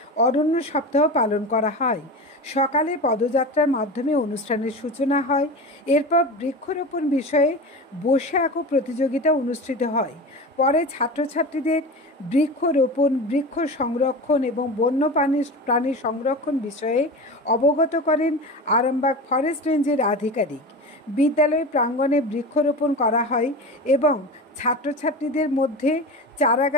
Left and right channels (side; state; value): both; normal; correlation 0.28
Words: অরণ্য সপ্তাহ পালন করা হয়। সকালে পদযাত্রার মাধ্যমে অনুষ্ঠানের সূচনা হয়। এরপর বৃক্ষরোপণ বিষয়ে বসে আঁকো প্রতিযোগিতা অনুষ্ঠিত হয়। পরে ছাত্রছাত্রীদের বৃক্ষরোপণ, বৃক্ষ সংরক্ষণ এবং বন্য প্রাণী সংরক্ষণ বিষয়ে অবগত করেন আরামবাগ ফরেস্ট রেঞ্জের আধিকারিক। বিদ্যালয় প্রাঙ্গণে বৃক্ষরোপণ করা হয় এবং ছাত্রছাত্রীদের মধ্যে